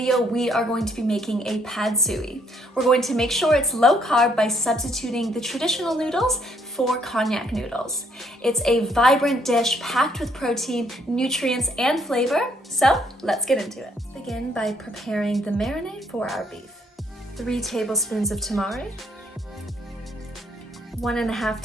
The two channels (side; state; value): both; normal; correlation 0.67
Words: we are going to be making a pad suey. We're going to make sure it's low carb by substituting the traditional noodles for Konjac noodles. It's a vibrant dish packed with protein, nutrients, and flavor. So let's get into it. Let's begin by preparing the marinade for our beef. 3 tablespoons of tamari, 1.5